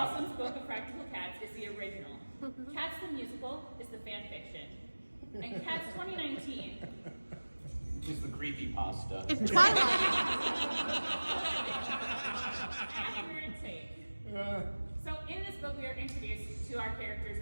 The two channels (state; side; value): inverted; both; correlation -1.00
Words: Possum's Book of Practical Cats is the original. Cats the musical is the fan fiction. And Cats 2019 Just the creepypasta. it's Twilight. accurate take. So in this book we are introduced to our characters